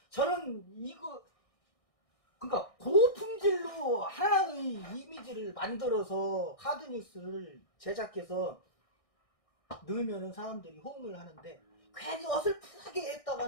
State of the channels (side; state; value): right; late; 1.6 ms